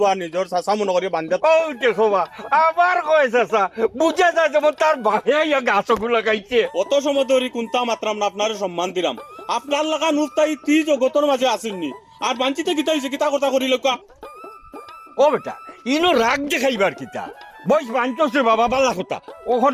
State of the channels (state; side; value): identical; both; correlation 1.00